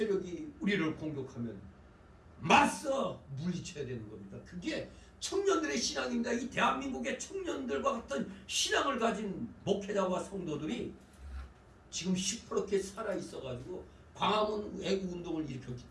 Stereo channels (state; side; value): identical; both; correlation 1.00